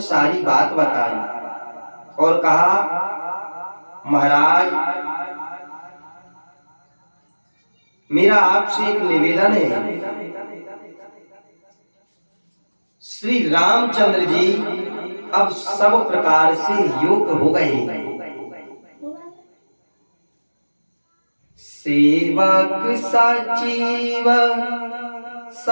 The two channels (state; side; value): inverted; both; correlation -1.00